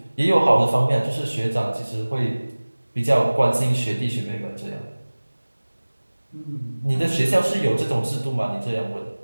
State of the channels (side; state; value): both; inverted; correlation -1.00